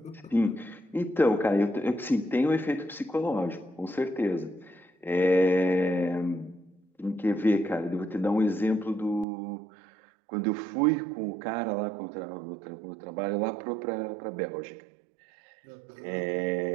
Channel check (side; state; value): left; drops out; at 9.2 s